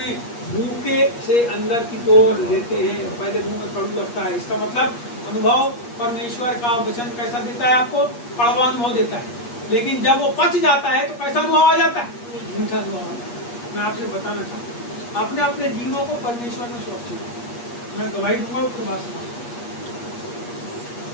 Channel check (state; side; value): late; right; 8.4 ms